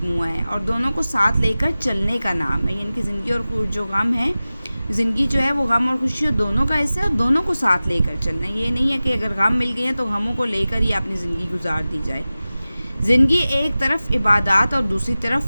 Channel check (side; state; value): both; inverted; correlation -0.96